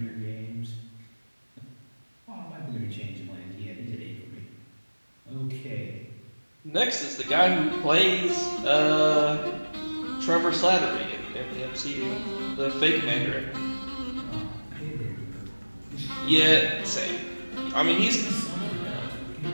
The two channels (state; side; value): inverted; both; correlation -1.00